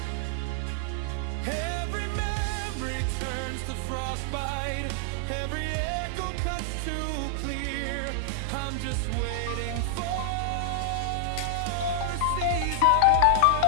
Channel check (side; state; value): both; different; correlation 0.00